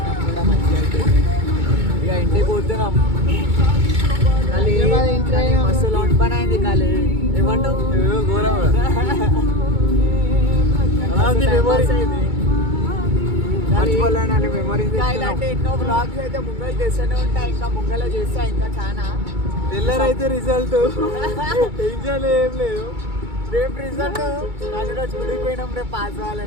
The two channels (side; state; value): left; late; 2.2 ms